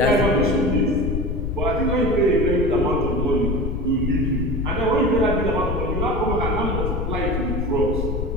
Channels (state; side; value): noise; left; rumble, 2 dB below the sound